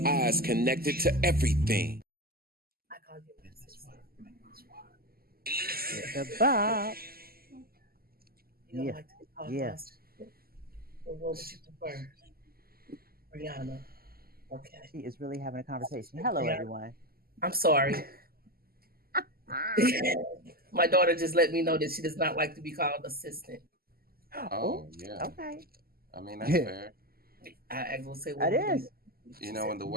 Eyes connected to everything. I call you that's why. The Bob. You don't like to be called monster. Well, what would you prefer? Rihanna. Okay. She is really having a conversation. Hello, everyone. I'm sorry. My daughter just let me know that she does not like to be called assistant. Oh, yeah. Okay. I mean, that's fair. I will say what it is. You know, when the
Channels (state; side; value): late; left; 0.44 ms